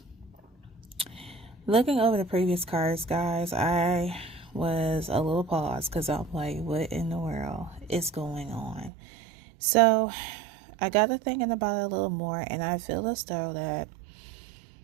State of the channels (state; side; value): drops out; left; at 8.9 s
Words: looking over the previous cards, guys, I was a little paused because I'm like, what in the world is going on? So, I got to thinking about it a little more, and I feel as though that